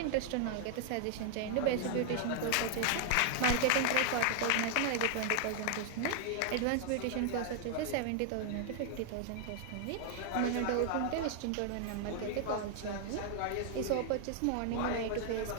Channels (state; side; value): different; both; correlation 0.00